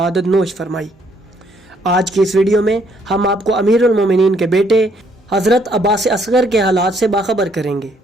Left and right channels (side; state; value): both; normal; correlation 0.68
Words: नोश फरमाई। आज की इस वीडियो में हम आपको अमीरुल मोमिनीन के बेटे हज़रत अब्बास असगर के हालात से बाखबर करेंगे।